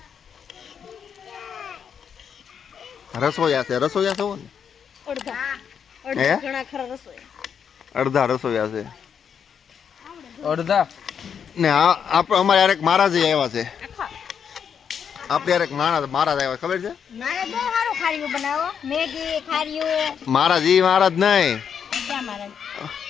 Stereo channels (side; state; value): right; quieter; 7.5 dB